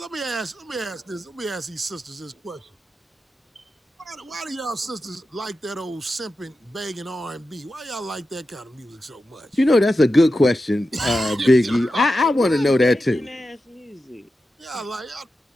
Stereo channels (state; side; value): normal; both; correlation 0.91